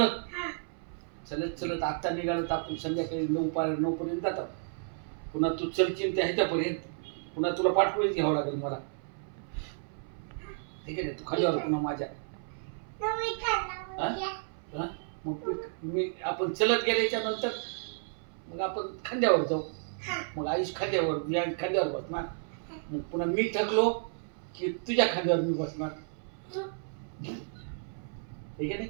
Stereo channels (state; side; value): silent; left; 56 dB below the other